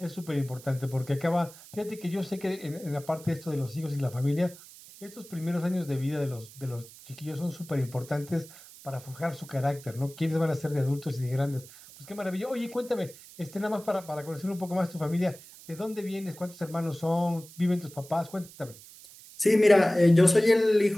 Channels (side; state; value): right; noise; hiss, 19 dB below the sound